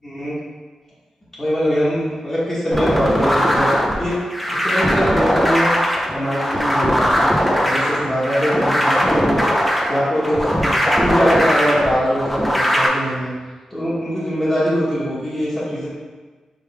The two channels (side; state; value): both; normal; correlation 0.92